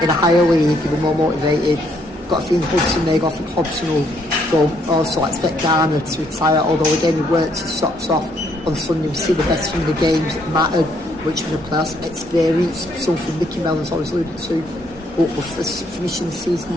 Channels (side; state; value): both; normal; correlation 0.70